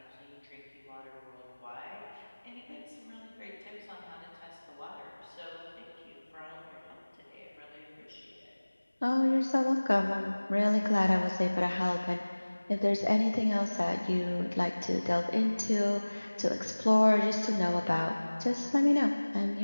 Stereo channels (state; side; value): inverted; both; correlation -1.00